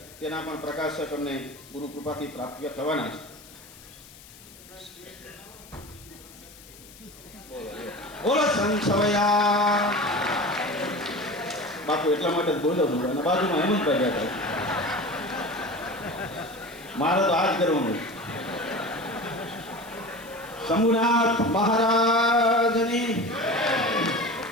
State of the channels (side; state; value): left; noise; hiss, 21 dB below the sound